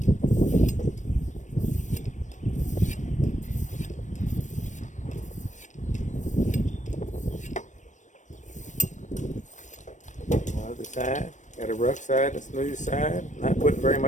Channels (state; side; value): late; right; 0.35 ms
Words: Other side. Got a rough side, a smooth side. Not putting very